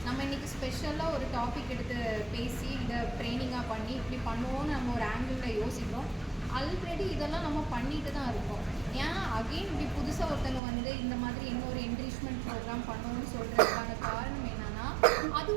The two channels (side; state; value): left; drops out; at 10.6 s